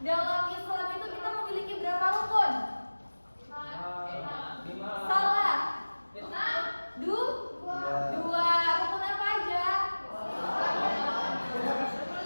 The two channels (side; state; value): both; inverted; correlation -1.00